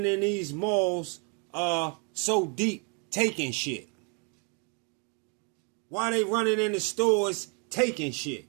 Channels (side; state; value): left; quieter; 37.1 dB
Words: in these malls so deep taking shit? Why they running in the stores taking shit?